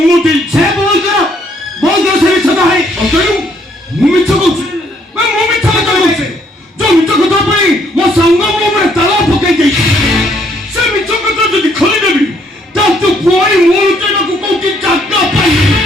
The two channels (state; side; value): normal; both; correlation 0.68